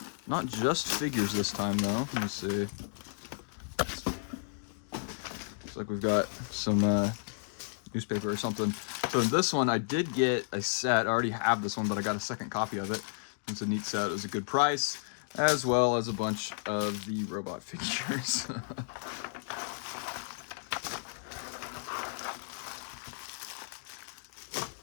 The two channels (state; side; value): silent; right; digital silence